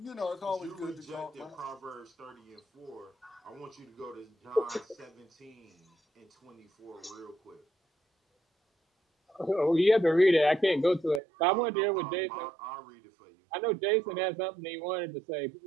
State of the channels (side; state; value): left; drops out; at 11.2 s